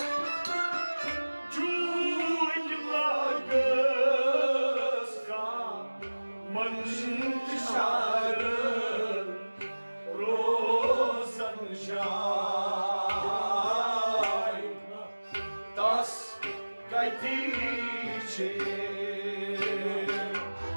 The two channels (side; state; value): both; inverted; correlation -1.00